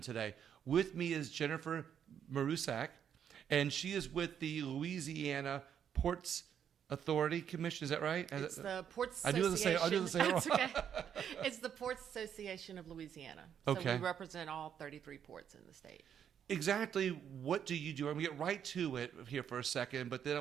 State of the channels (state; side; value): quieter; left; 8.7 dB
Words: today. With me is Jennifer Marusak, and she is with the Louisiana Ports Authority Commission. Is that right? It's the Ports I do the same. Wrong. It's okay. It's the Ports Association of Louisiana. So Okay. we represent all 33 ports in the state. Exactly what do you do? I'm going to get right to it here for a second, but